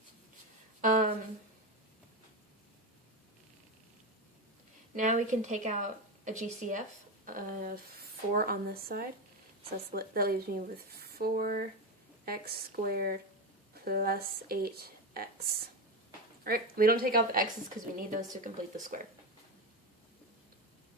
Now we can take out a GCF of 4 on this side. So that leaves me with 4x squared plus 8x. Alright, we don't take out the x's because we need those to complete the square.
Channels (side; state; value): both; normal; correlation 0.16